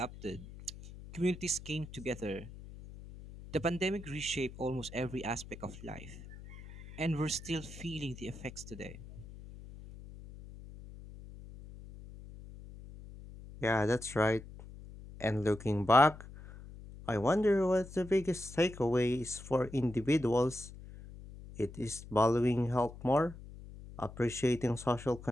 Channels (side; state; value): left; noise; hum, 15 dB below the sound